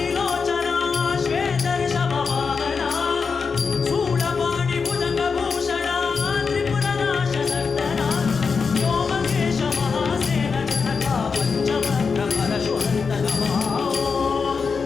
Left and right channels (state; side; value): quieter; right; 5.3 dB